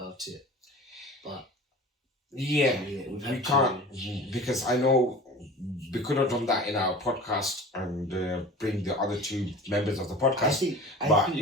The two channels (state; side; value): normal; both; correlation 0.38